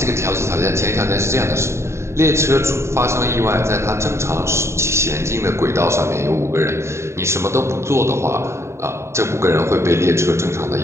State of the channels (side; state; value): left; late; 0.13 ms